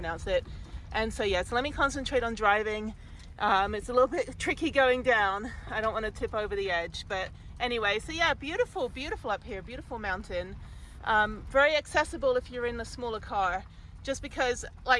it. And so yeah, so let me concentrate on driving. It's a little bit tricky going down. I don't want to tip over the edge, but anyway, so yeah, beautiful up here, beautiful mountain. Very accessible if you're in a smaller car, just because,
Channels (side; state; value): both; identical; correlation 1.00